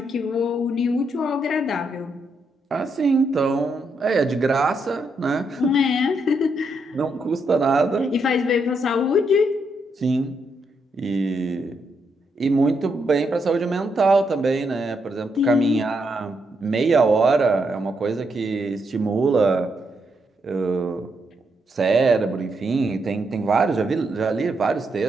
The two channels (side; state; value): both; normal; correlation 0.79